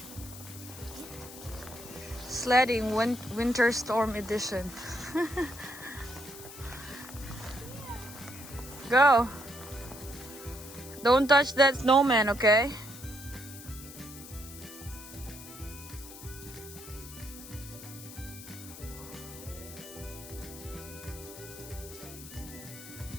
Sledding winter storm edition. Go. Don't touch that snowman, okay?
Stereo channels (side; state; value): left; noise; hiss, 14 dB below the sound